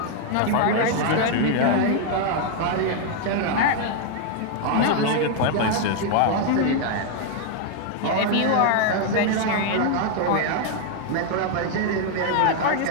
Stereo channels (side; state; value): both; different; correlation 0.00